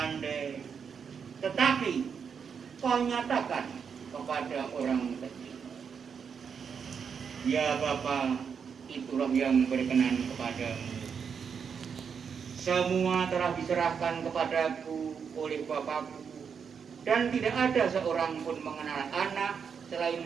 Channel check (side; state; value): left; quieter; 6.6 dB